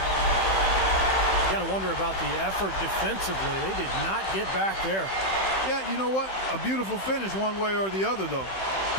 You got to wonder about the effort defensively. They did not get back there. Yeah, you know what? A beautiful finish one way or the other, though.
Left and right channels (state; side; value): late; right; 15 ms